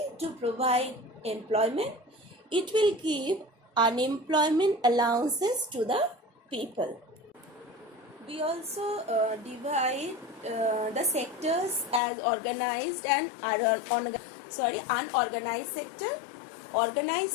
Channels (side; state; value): right; drops out; at 12.0 s